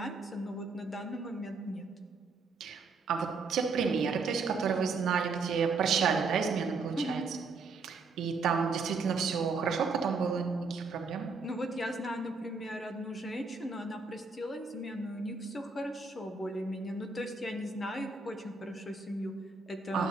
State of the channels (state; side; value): quieter; left; 4.3 dB